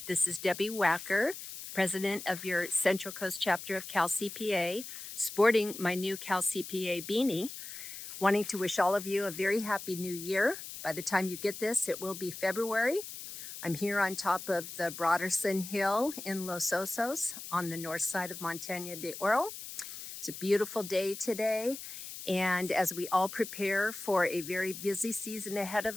This is Debbie Wacker, President of your Central Coast chapter of Cal CPA, sporting my new Cal CPA beanie, wanting to wish all of you a very happy new year. By the time you get this, it will be February. I'm here on top of the Broderson Hill in Los Osos on the north side of Montaña de Oro. It's a beautiful day today. And as we all prepare for a very busy season ahead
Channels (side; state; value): left; noise; hiss, 10 dB below the sound